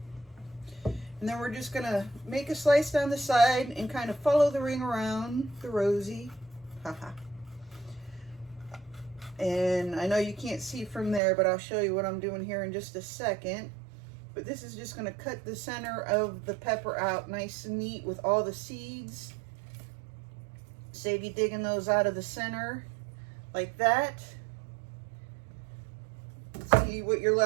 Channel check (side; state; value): left; drops out; at 11.2 s